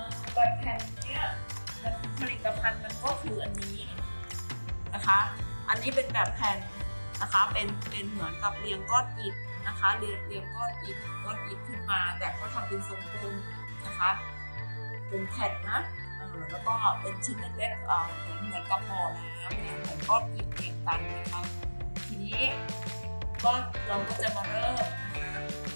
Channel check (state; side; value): inverted; both; correlation -1.00